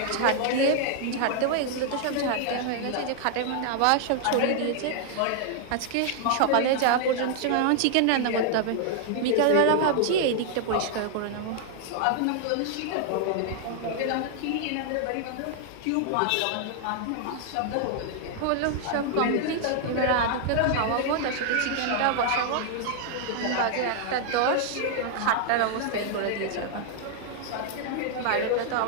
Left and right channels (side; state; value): both; different; correlation 0.00